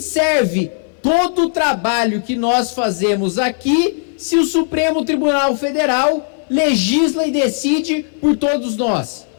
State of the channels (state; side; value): silent; right; 68 dB below the other